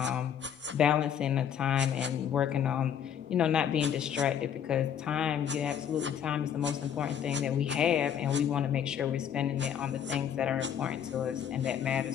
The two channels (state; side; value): quieter; right; 8.7 dB